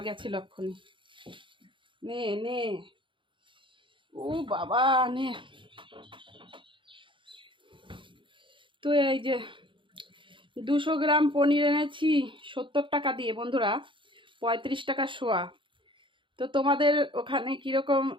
গেছিল এক্ষুনি। নে নে, ও বাবা নে। তো এই যে 200 গ্রাম পনির এনেছি 70 টাকা দিয়ে বন্ধুরা, 35 টাকা শোয়া। তো তোমাদের ওখানে কীরকম,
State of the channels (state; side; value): late; left; 0.24 ms